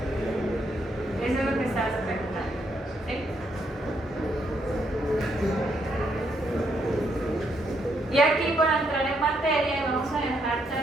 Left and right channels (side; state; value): both; normal; correlation 0.75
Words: Y aquí, para entrar en materia, vamos a dejar